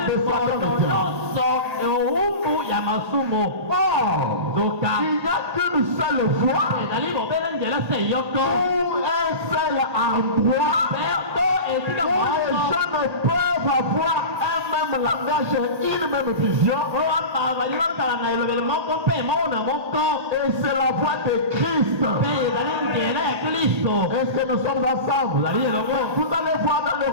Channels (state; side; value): late; left; 1.8 ms